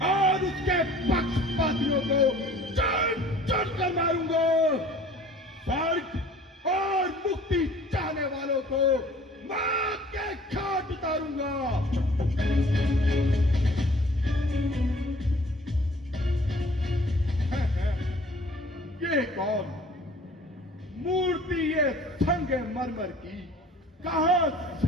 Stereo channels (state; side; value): normal; both; correlation 0.50